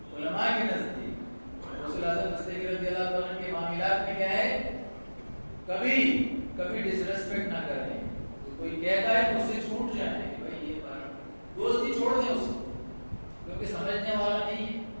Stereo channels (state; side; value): inverted; both; correlation -1.00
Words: علماء کے نزدیک. رسول اعظم دستگیر رضی اللہ عنہ کے معاملات میں کیا ہے؟ کبھی ڈس ریسپیکٹ نہ کریں. کوئی کہتا ہے تو اس سے چھوٹ جائیں کہ بھائی یہ دوستی چھوڑ دیں اس کو، کیونکہ سمجھنے والا نہیں ہے.